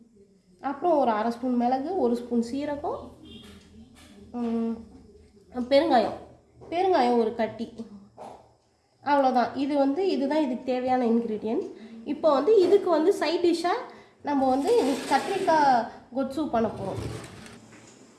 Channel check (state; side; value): identical; both; correlation 1.00